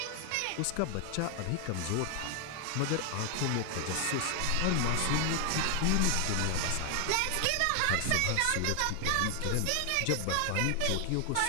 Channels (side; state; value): both; different; correlation 0.00